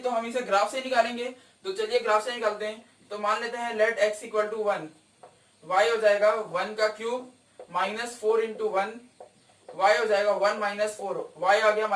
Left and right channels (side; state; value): both; identical; correlation 1.00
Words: हम इसे ग्राफ से निकालेंगे। तो चलिए ग्राफ से निकालते हैं। तो मान लेते हैं let x equal to 1, y हो जाएगा 1 का क्यूब -4 इंटू 1, y हो जाएगा 1 - 4, y आ गया